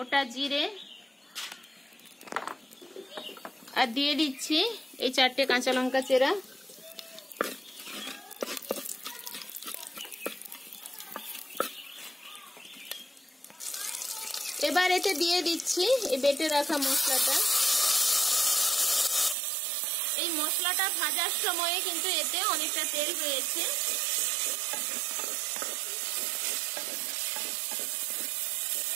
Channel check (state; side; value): drops out; left; at 19.4 s